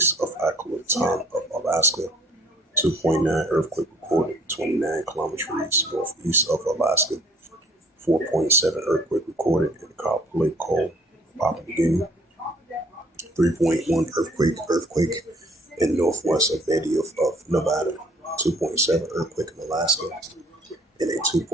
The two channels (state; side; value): normal; both; correlation 0.57